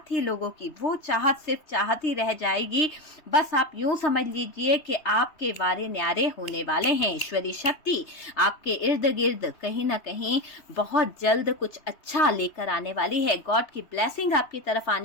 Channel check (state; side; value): late; right; 3.2 ms